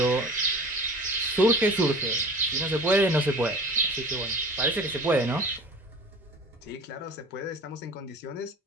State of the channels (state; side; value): normal; both; correlation 0.41